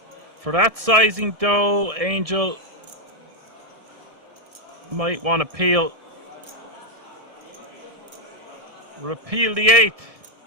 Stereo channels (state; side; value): late; left; 1.7 ms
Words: For that sizing though, Angel, might want to repeal the 8,